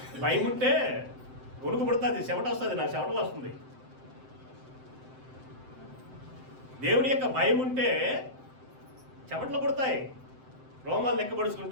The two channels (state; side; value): late; left; 7.7 ms